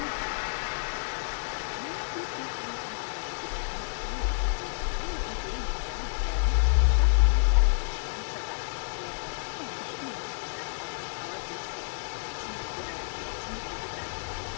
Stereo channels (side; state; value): right; silent; digital silence